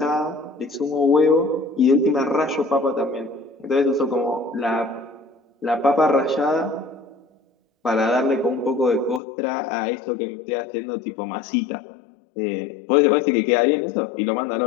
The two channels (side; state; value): right; drops out; at 9.2 s